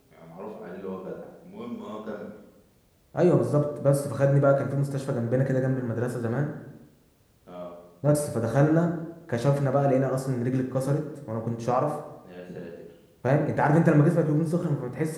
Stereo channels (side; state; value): both; identical; correlation 1.00